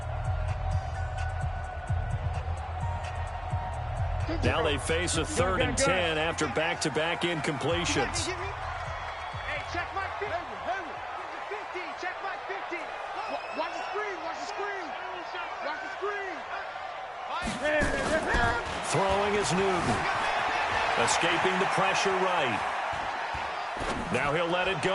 Now they face a 3rd and 10 after back-to-back incompletions. Hey, check my 50. Check my 50. Watch the screen. Throwing is Newton. Escaping the pressure right. Now he'll let it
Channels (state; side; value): identical; both; correlation 1.00